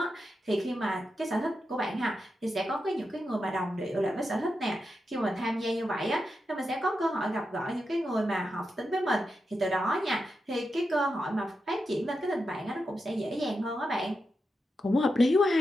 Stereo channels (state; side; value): normal; both; correlation 0.87